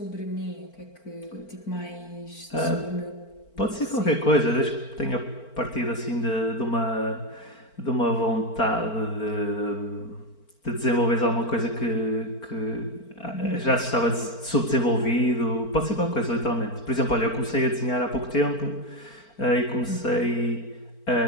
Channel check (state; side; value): late; right; 4.4 ms